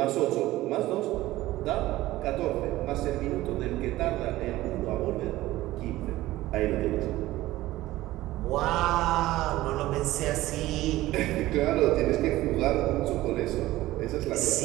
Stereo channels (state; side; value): quieter; left; 16.7 dB